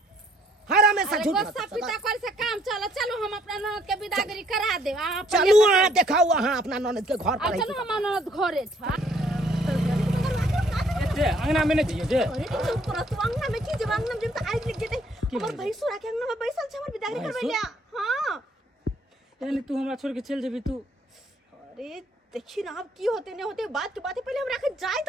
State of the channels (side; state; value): both; normal; correlation 0.65